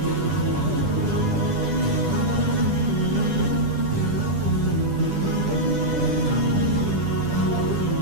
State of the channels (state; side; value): late; left; 10 ms